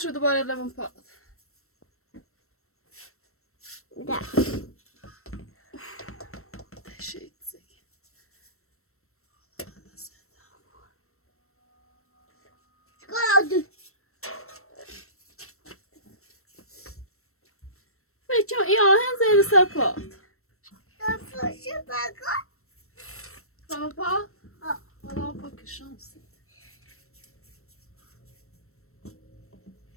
دوباره لبن پاد شيء زي فيتشو يا هن زي السباط سباط والله بك الشمس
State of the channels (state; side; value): late; right; 0.63 ms